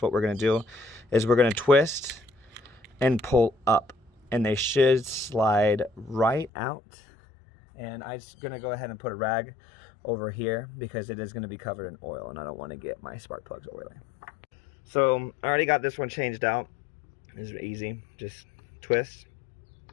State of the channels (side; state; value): right; drops out; at 6.5 s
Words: what we're going to do is we're going to twist and pull up, and they should slide right out. And I'm just going to go ahead and put a rag over here because it is going to be covered in oil, and I don't want to get my spark plugs oily. So I already got this one changed out. It's easy. Just twist.